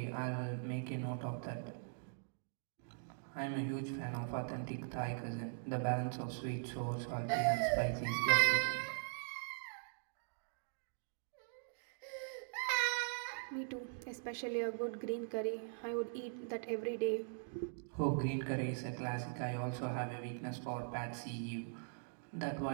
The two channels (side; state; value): left; silent; digital silence